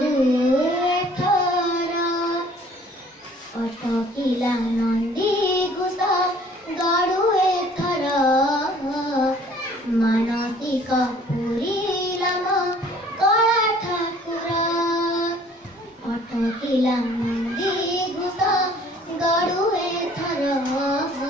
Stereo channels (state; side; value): normal; both; correlation 0.54